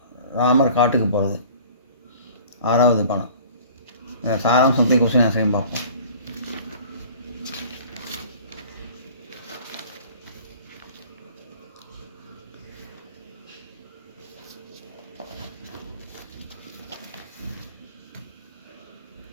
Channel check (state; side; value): inverted; both; correlation -0.46